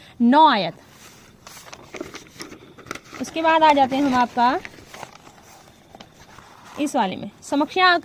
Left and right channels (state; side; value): identical; both; correlation 1.00